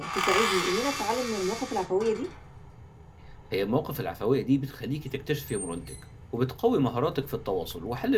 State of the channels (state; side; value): identical; both; correlation 1.00